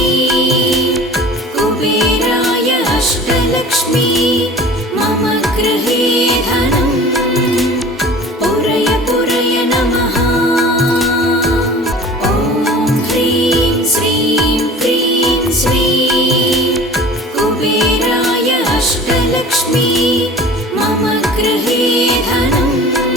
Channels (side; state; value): both; normal; correlation 0.42